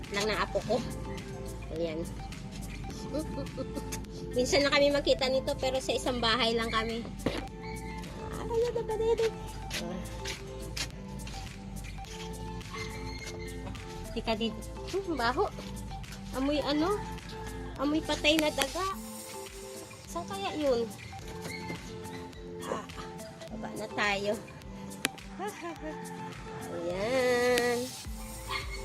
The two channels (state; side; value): identical; both; correlation 1.00